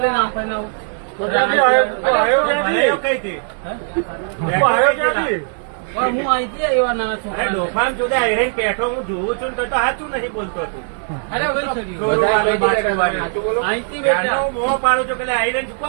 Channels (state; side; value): silent; left; 67 dB below the other